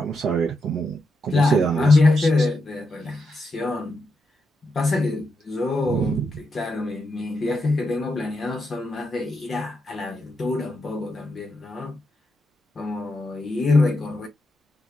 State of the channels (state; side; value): normal; both; correlation 0.84